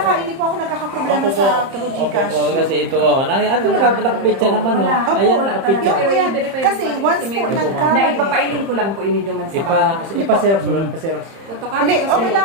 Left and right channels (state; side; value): late; left; 30 ms